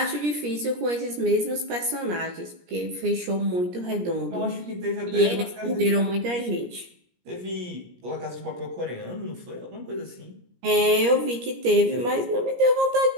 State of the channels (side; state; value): left; late; 17 ms